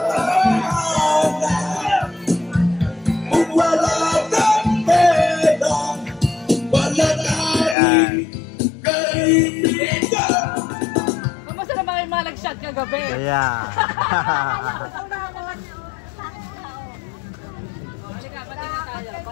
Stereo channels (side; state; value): right; drops out; at 7.8 s